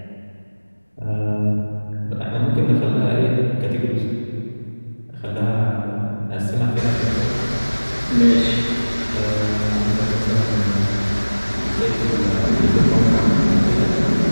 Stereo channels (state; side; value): inverted; both; correlation -1.00